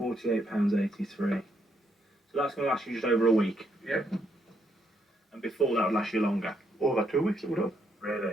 So that's going to last you just over a week. Yep. And before that would last you longer. Over 2 weeks it would have.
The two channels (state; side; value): normal; both; correlation 0.75